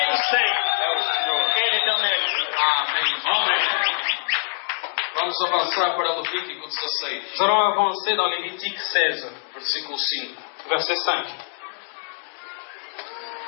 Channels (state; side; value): silent; right; 56 dB below the other